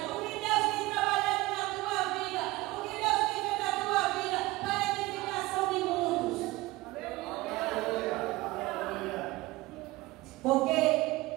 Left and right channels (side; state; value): left; quieter; 20.0 dB